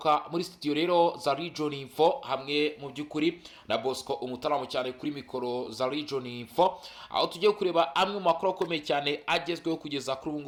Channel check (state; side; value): identical; both; correlation 1.00